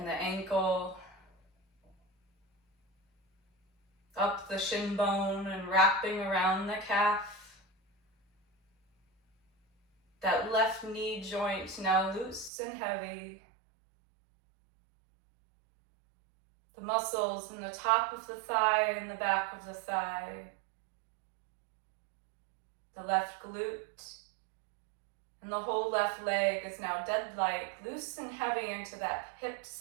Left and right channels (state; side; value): drops out; left; at 12.5 s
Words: the ankle, up the shin bone and wrapping around the calf. That left knee joint now loose and heavy. The muscles in the top of the thigh and the back of the thigh. The left glute and the whole left leg is now dead-like, loose and heavy into that hip